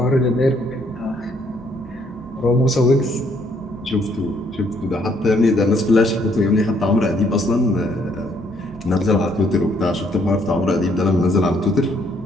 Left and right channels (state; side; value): normal; both; correlation 0.68